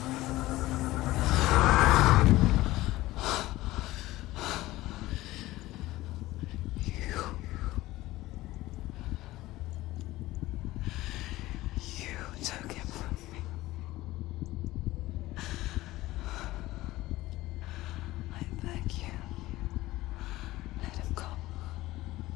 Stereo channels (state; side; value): quieter; right; 17.5 dB